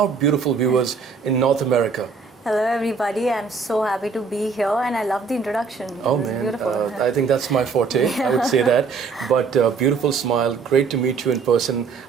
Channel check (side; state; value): left; quieter; 5.1 dB